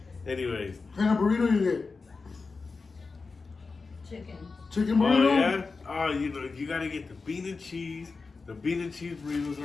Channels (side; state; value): right; quieter; 4.3 dB